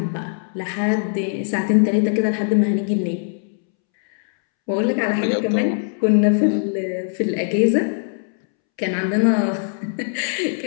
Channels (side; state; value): right; silent; 65 dB below the other